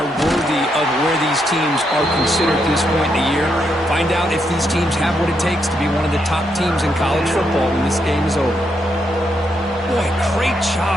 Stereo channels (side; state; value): both; normal; correlation 0.79